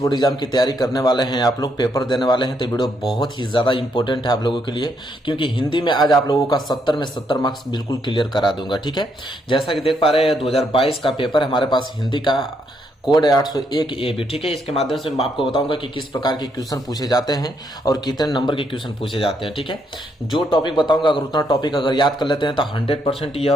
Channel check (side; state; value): both; normal; correlation 0.75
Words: एग्जाम की तैयारी करने वाले हैं, आप लोग पेपर देने वाले हैं, तो वीडियो बहुत ही ज्यादा इंपॉर्टेंट है आप लोगों के लिए, क्योंकि हिंदी में आज आप लोगों का 70 में 70 मार्क्स बिल्कुल क्लियर करा दूंगा। ठीक है, जैसा कि देख पा रहे हैं 2022 का पेपर हमारे पास हिंदी का कोड है 801 ए बी। ठीक है, इसके माध्यम से मैं आपको बताऊंगा कि किस प्रकार के क्वेश्चन पूछे जाते हैं और कितने नंबर के क्वेश्चन पूछे जाते हैं। ठीक है, जो टॉपिक बताऊंगा अगर उतना टॉपिक अगर याद कर लेते हैं तो 100%